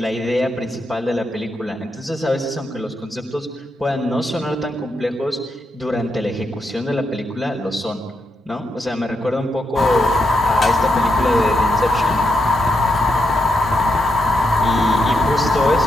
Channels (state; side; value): normal; both; correlation 0.82